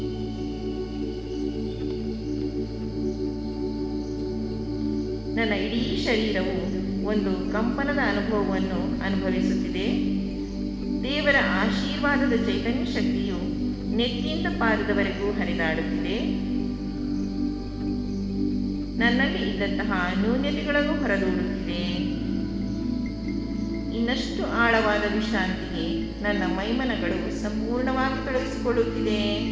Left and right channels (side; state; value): both; identical; correlation 1.00